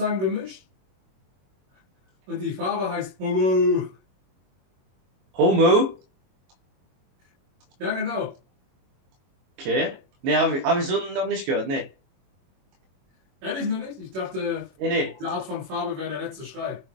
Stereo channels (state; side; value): late; left; 22 ms